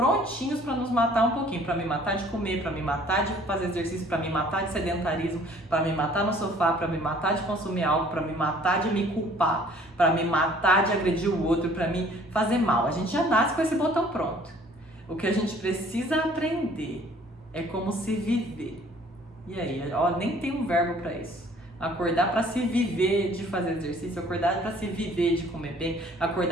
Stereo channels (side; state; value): both; normal; correlation 0.55